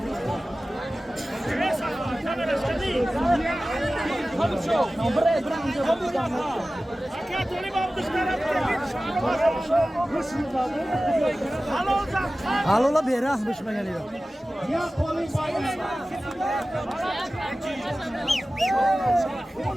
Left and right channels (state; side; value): normal; both; correlation 0.96